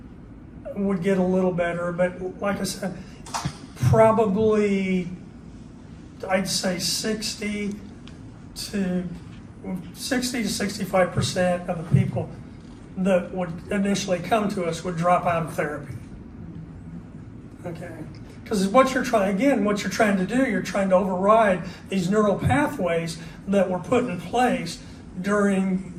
would get a little better, but like I said, probably, I'd say 60 to 65% of the people that would initially come to us would drop out of therapy. Okay, because what you're trying to do, you're trying to override these neural pathways that were put in place during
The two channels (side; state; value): both; identical; correlation 1.00